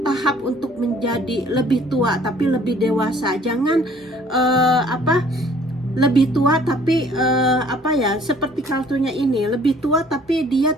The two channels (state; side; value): normal; both; correlation 0.56